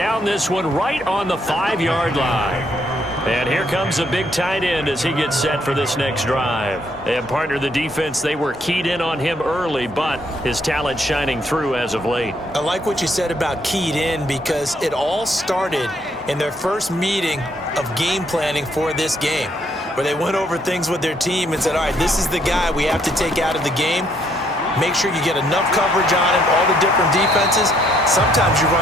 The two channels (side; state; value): both; normal; correlation 0.70